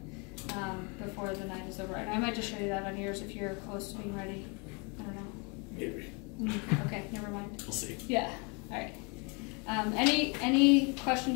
before the night is over. And I might just show you that on yours if you're close to being ready. I don't know. Maybe. Okay, never mind. We'll see. Yeah. All right. Any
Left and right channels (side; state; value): right; quieter; 32.4 dB